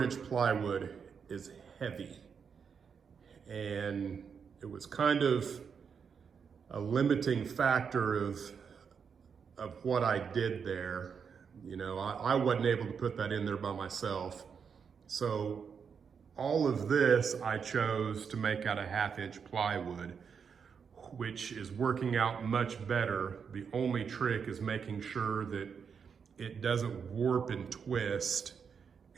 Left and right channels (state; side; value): quieter; left; 6.5 dB